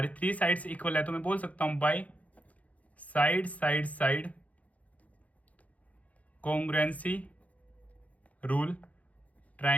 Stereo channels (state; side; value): late; right; 0.069 ms